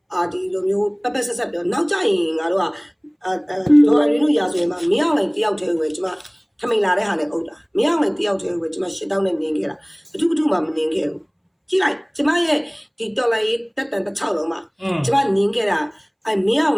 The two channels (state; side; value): identical; both; correlation 1.00